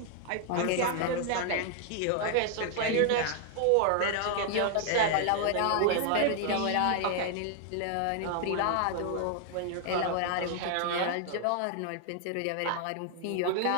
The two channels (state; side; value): different; both; correlation 0.00